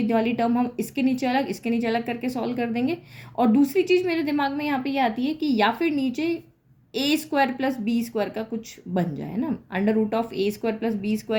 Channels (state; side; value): identical; both; correlation 1.00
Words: वाली टर्म हम इसके नीचे अलग इसके नीचे अलग करके सॉल्व कर देंगे। और दूसरी चीज़ मेरे दिमाग में यहाँ पे ये आती है कि या फिर नीचे A square plus B square का कुछ बन जाए ना, under root of A square plus B